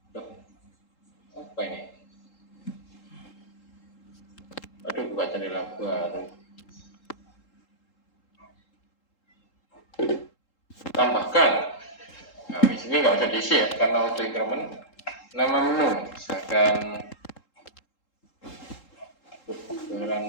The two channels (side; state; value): right; late; 3.8 ms